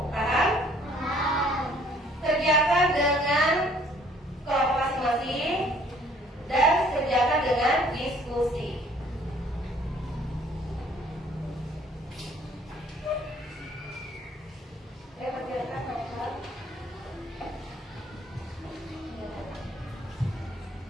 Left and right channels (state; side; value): normal; both; correlation 0.59